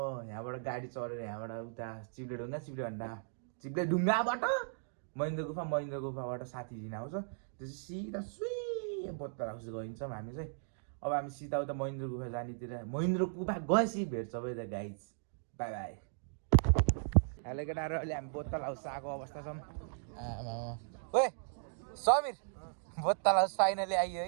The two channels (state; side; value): silent; left; digital silence